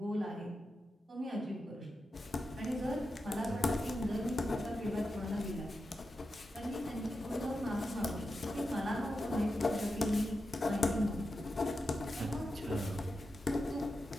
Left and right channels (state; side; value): normal; both; correlation 0.90